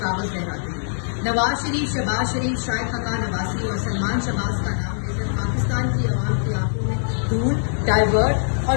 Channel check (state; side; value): silent; right; 64 dB below the other